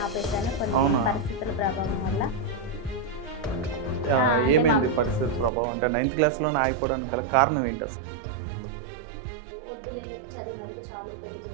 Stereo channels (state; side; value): drops out; left; at 5.5 s